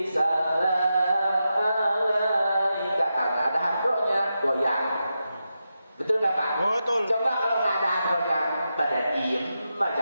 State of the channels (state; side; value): inverted; both; correlation -0.88